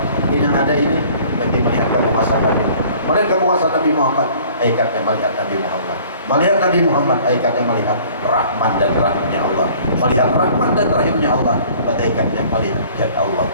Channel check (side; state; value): both; inverted; correlation -0.52